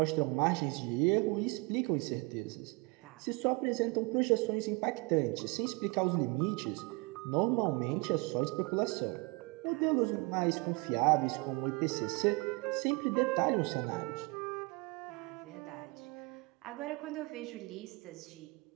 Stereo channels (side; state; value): left; quieter; 27.7 dB